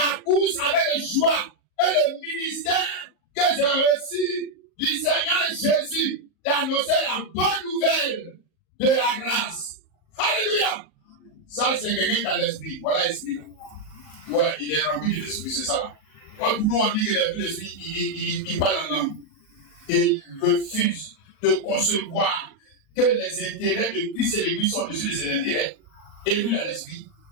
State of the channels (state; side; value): late; right; 38 ms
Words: course avec joie et le ministère que j'ai reçu du Seigneur Jésus d'annoncer la bonne nouvelle de la grâce. Alléluia! Ça, c'est quelqu'un qui a l'esprit. Voilà l'esprit là. Ouais, il est rempli de l'esprit, c'est ça là. Pour nous, on dit qu'il est rempli de l'esprit, il parle en langue. Et il refuse de concevoir que les intérêts de Christ et l'Église sont au-dessus de ses intérêts. Et lui, il a l'esprit.